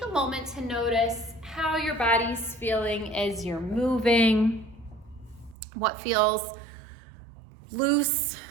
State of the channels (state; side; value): drops out; left; at 5.6 s